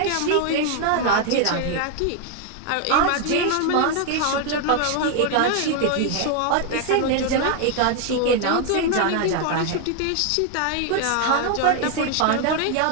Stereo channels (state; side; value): different; both; correlation 0.01